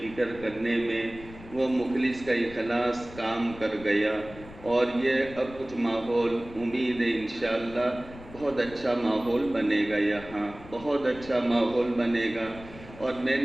فکر کرنے میں، وہ مخلص کا اخلاص کام کر گیا، اور یہ اب کچھ ماحول امید ہے انشاءاللہ بہت اچھا ماحول بنے گا، یہاں بہت اچھا ماحول بنے گا۔ اور میں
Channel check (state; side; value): noise; left; rumble, 17 dB below the sound